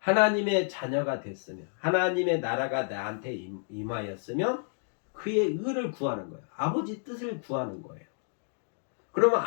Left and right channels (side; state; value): right; silent; digital silence